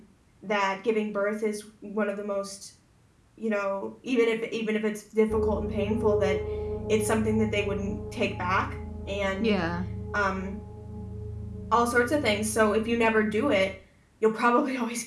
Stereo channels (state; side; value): identical; both; correlation 1.00